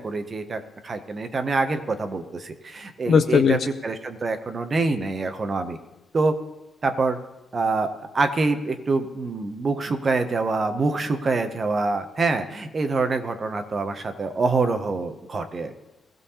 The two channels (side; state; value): both; normal; correlation 0.82